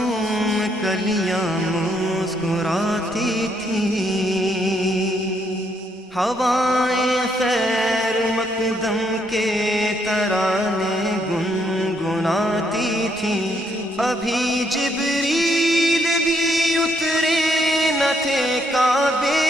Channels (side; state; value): both; normal; correlation 0.73